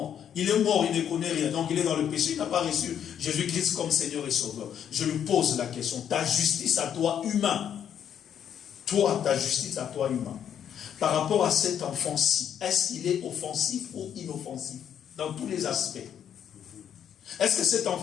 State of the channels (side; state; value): right; quieter; 9.1 dB